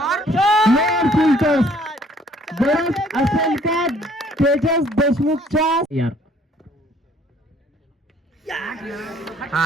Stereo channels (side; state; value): both; normal; correlation 0.60